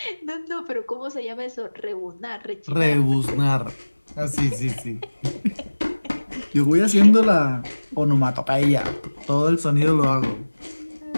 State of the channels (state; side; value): inverted; both; correlation -1.00